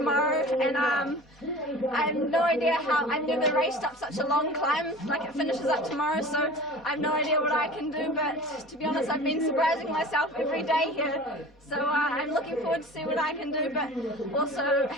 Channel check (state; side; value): normal; both; correlation 0.39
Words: and I have no idea how. I've never raced up such a long climb, like it finishes up tomorrow, so I have no idea what I can do, but to be honest, I've been surprising myself every day here. So I'm looking forward to see what I can do, but also